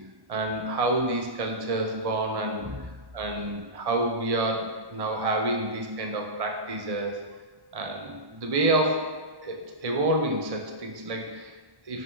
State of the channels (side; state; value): left; late; 1.1 ms